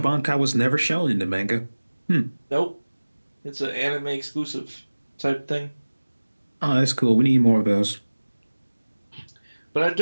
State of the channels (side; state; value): both; inverted; correlation -1.00